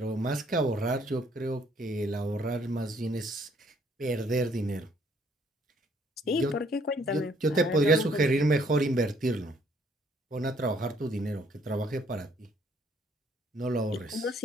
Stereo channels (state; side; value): normal; both; correlation 0.65